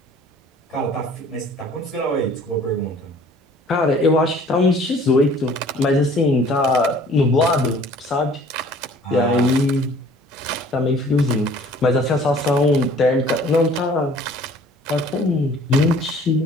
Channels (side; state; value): both; normal; correlation 0.52